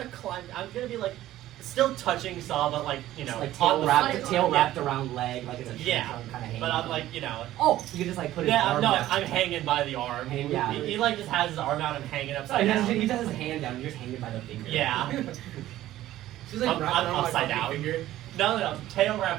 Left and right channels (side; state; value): left; quieter; 14.3 dB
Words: climb. I'm gonna be like still touching Saw, but like you know, like on the tail front. wrapped around leg, like it's a Yeah, kind of hanging. but I'm like you know. Oh, you can just like put his Yeah, arm no, down. I'm hanging by the arm. Yeah. He like just has his arm out and hanging So upside he down. just has his hand down. You're just hanging by the finger. Yeah. She's like wrapped I'm around my upside fucking down. finger. No, tail